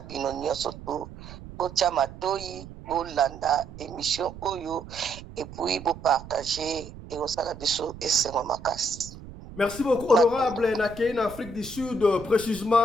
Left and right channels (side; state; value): right; noise; rumble, 15 dB below the sound